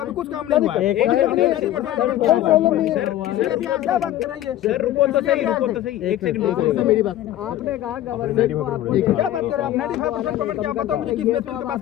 कुछ काम नहीं हुआ है। क्या बात कर रहे हैं? सर रुको तो सही, एक सेकंड मेरी बात आपने कहा गवर्नमेंट को आपको क्या बात कर रहे हैं आप? 95% पेमेंट क्या बताओ मुझे, किस बेस पे इनके पास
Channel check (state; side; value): quieter; right; 13.1 dB